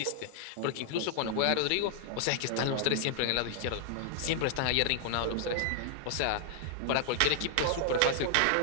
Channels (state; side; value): different; both; correlation 0.00